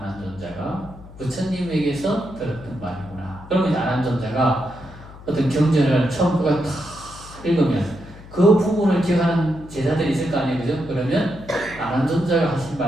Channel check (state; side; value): noise; left; hum, 18 dB below the sound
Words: 부처님에게서 들었던 말이구나. 그러면 아난존자가 어떤 경전을 처음부터 다 읽으면 그 부분을 기억하는 제자들이 있을 거 아니에요, 그죠? 그러면 안한존자가 하신